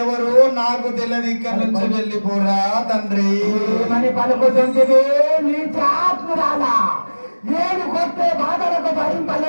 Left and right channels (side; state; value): both; inverted; correlation -1.00